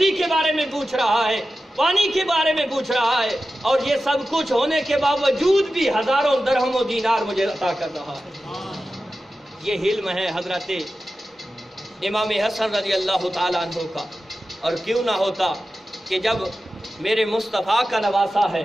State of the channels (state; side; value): normal; both; correlation 0.93